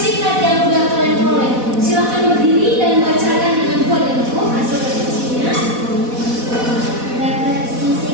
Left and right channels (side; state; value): left; late; 4.1 ms